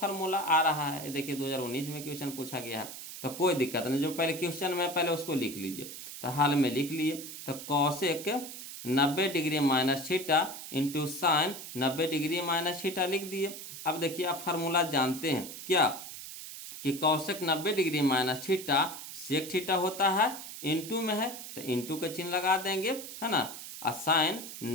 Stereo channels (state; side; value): noise; right; hiss, 11 dB below the sound